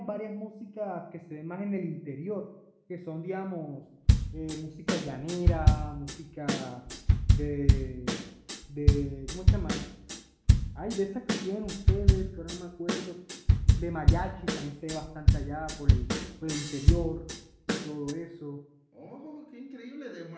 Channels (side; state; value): both; identical; correlation 1.00